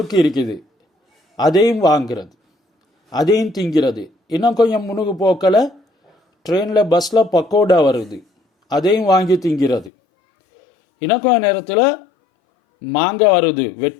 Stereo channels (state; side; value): drops out; right; at 9.9 s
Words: இருக்குது, அதையும் வாங்கிறது, அதையும் திங்கிறது. இன்னும் கொஞ்சம் முன்னுக்கு போக்கல ட்ரெயினில் பஸ்ஸில் பக்கோடா வருது, அதையும் வாங்கி திங்கிறது. இன்னும் கொஞ்சம் நேரத்தில் மாங்காய் வருது,